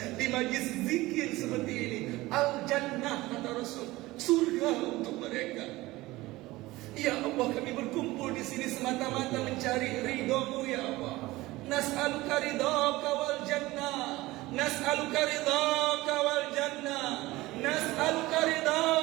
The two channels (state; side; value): quieter; left; 19.2 dB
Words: di majlis zikir seperti ini? Al-Jannah, kata Rasul, surga untuk mereka. Ya Allah, kami berkumpul di sini semata-mata mencari ridha-Mu ya Allah. Nas'aluka ridhaka wal jannah, nas'aluka ridhaka wal jannah, nas'aluka